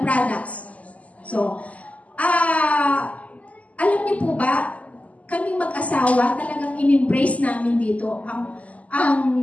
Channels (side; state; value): right; late; 0.071 ms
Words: products. So, alam niyo po ba, kaming mag-asawa, talagang in-embrace namin dito